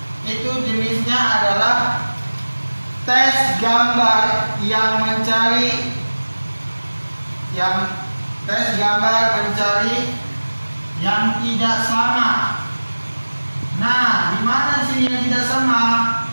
itu jenisnya adalah tes gambar yang mencari yang tidak sama. Nah, di mana sini yang tidak sama?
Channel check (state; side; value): inverted; both; correlation -1.00